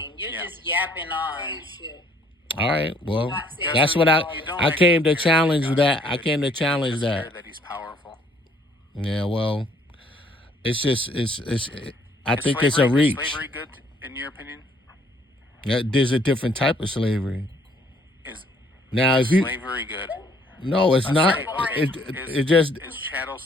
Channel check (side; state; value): both; normal; correlation 0.63